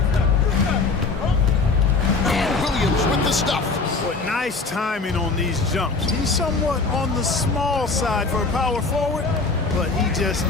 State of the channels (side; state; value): right; quieter; 4.1 dB